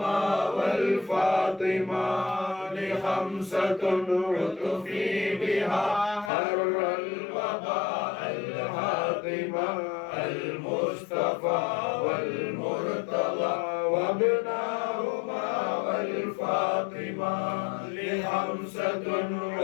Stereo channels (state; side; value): drops out; right; at 6.3 s